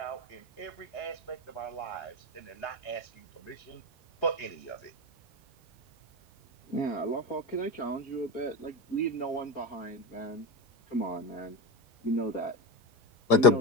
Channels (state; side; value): normal; both; correlation 0.16